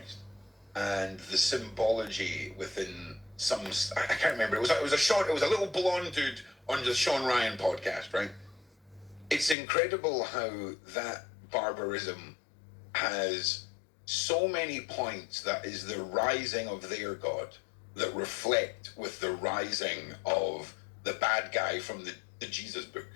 and the symbology within some, I can't remember. It was a little blonde dude on the Sean Ryan podcast, right? It's incredible how that barbarism has so many points that is the rising of their God that reflect with the rising of the bad guy from the Jesus book.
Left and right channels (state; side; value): drops out; right; at 9.6 s